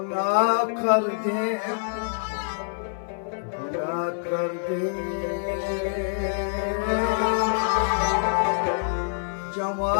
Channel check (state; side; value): silent; right; digital silence